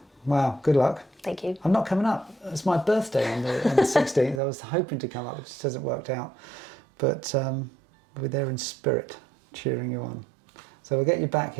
wow, good luck. Thank you. I'm not coming up. It's my birthday on the 16th. I was hoping to come up, it just hasn't worked out. But we're there in spirit, cheering you on. So we'll get you back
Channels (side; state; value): left; drops out; at 4.4 s